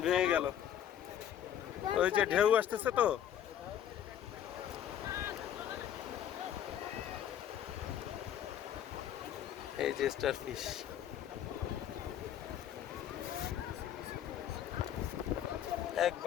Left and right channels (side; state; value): right; quieter; 10.3 dB